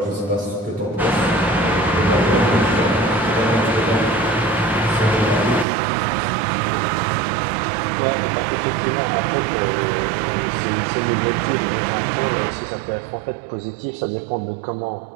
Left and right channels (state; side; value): drops out; left; at 5.7 s